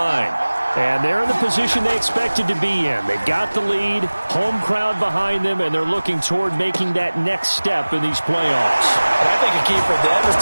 And they're in the position they expected to be in. They've got the lead, home crowd behind them, and they're looking toward making that next step in these playoffs. And I think a key for them is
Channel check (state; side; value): inverted; both; correlation -1.00